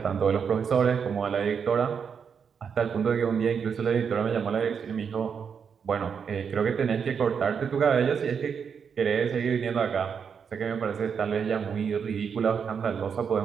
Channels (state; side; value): quieter; left; 6.7 dB